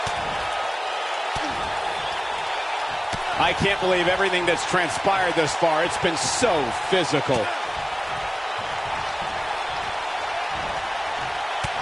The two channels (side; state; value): both; identical; correlation 1.00